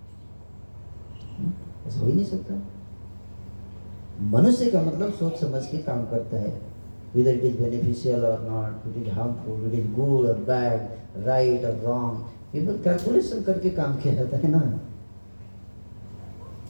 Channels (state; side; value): inverted; both; correlation -1.00